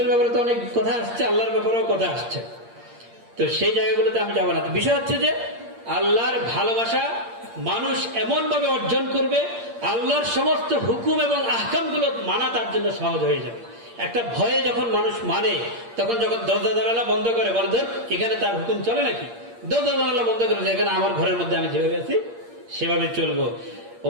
ব্যাপারে তো অনেক কথা আসছে, আল্লাহর ব্যাপারেও কথা আসছে, তো সেই জায়গাগুলোতে আমি যাবো না। তো বিষয় হচ্ছে যে আল্লাহর ভালোবাসা মানুষ এমন ভাবে অর্জন করবে, আল্লাহর সমস্ত হুকুম এবং আহকামগুলো মানা তার জন্য সহজ হয়ে যাবে। একটা ভয়ে যখন মানুষ মানে, তখন যখন দরজা জানালা বন্ধ করে, বলে ধর এখানে তার হুকুম চলে নাকি, দরজা জানালা বন্ধ করে, এখানে আমার ঘরের মধ্যে আমি যেভাবে আছি সেভাবে চলবো।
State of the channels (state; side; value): late; left; 8.6 ms